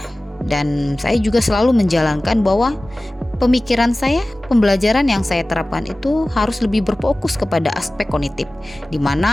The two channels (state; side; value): normal; both; correlation 0.97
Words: dan saya juga selalu menjalankan bahwa pemikiran saya, pembelajaran yang saya terapkan itu harus lebih berfokus kepada aspek kognitif, di